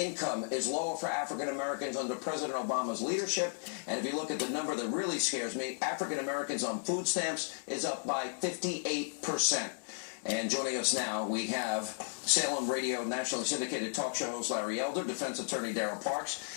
is lower for African Americans under President Obama's leadership. And if you look at the number that really scares me, African Americans on food stamps is up by 58%. And joining us now, we have Salem Radio nationally syndicated talk show host Larry Elder, defense attorney Darrell Parks.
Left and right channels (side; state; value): right; silent; digital silence